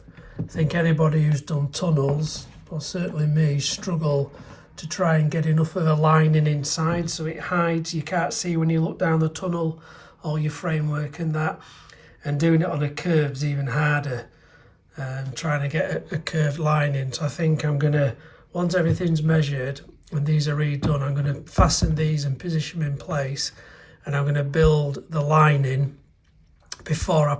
I think anybody who's done tunnels, or certainly me, struggle to try and get enough of a lining inside so it hides, you can't see when you look down the tunnel, all your framework and that. And doing it on a curve's even harder, trying to get a curved line in. So I think I'm gonna, once everything's measured and these are redone, I'm gonna fasten these and position them in place, and I'm gonna build the lining before I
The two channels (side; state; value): both; identical; correlation 1.00